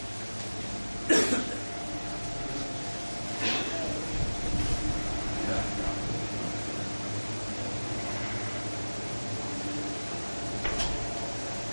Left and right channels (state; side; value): inverted; both; correlation -1.00